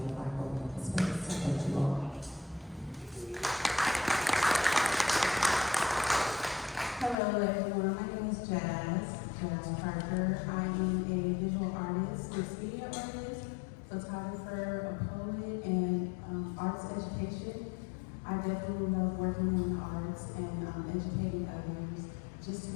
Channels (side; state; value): right; drops out; at 7.2 s